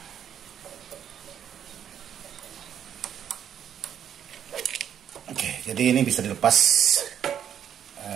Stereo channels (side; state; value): left; quieter; 9.2 dB